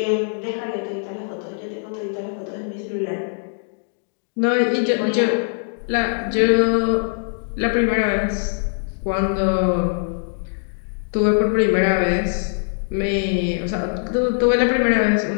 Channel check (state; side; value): silent; right; 64 dB below the other